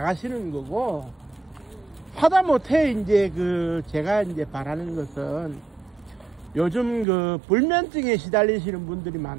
거고, 하다못해 이제 제가 이제 바라는 것은 요즘 불면증에 시달리시는 분들이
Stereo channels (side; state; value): left; drops out; at 7.1 s